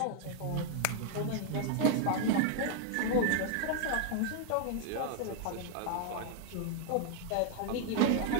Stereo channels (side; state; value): both; different; correlation 0.00